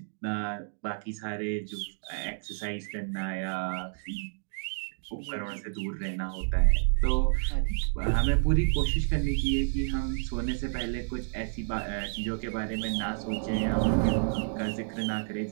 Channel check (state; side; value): silent; left; digital silence